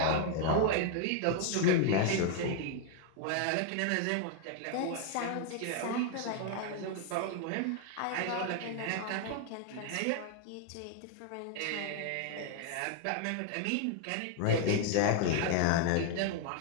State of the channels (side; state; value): both; different; correlation 0.01